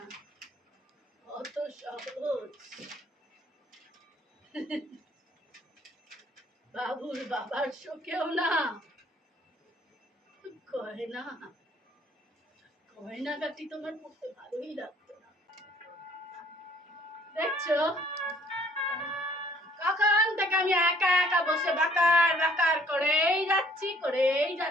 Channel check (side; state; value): both; normal; correlation 0.59